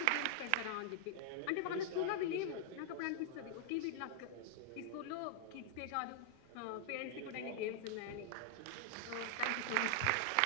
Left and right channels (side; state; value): both; different; correlation -0.01